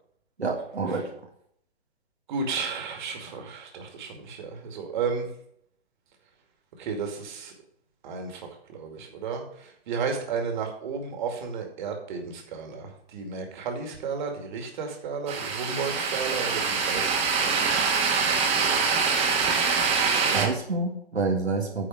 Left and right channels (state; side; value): quieter; left; 4.7 dB